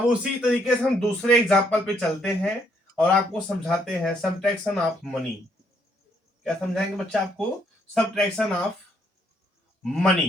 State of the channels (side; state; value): both; normal; correlation 0.71